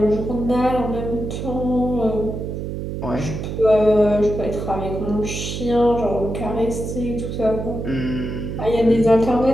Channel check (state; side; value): noise; right; hum, 5 dB below the sound